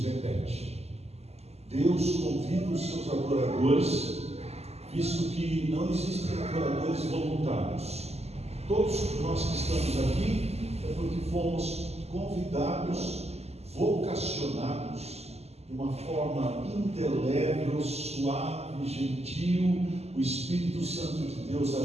repete. Deus convida os seus adoradores, visto que não existem adoradores voluntários. Todos nós que estamos aqui é porque fomos convidados, vocacionados, de uma forma indelével, suave, gentil, o Espírito Santo de Deus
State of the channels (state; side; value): late; left; 0.30 ms